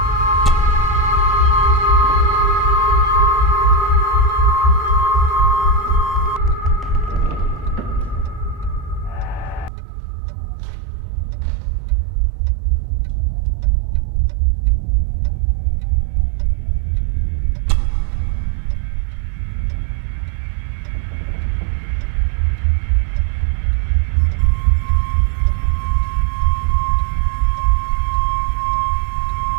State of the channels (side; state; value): left; drops out; at 9.7 s